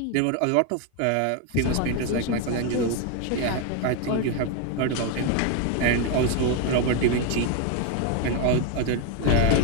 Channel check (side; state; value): both; different; correlation 0.01